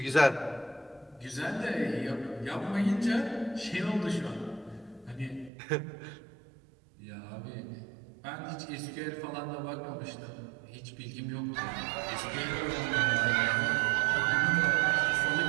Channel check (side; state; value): left; drops out; at 5.5 s